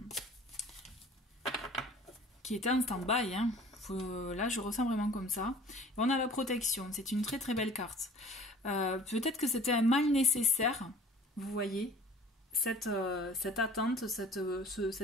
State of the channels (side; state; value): both; normal; correlation 0.47